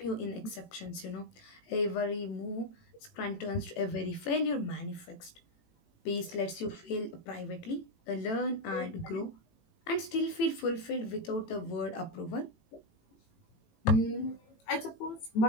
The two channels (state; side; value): late; right; 18 ms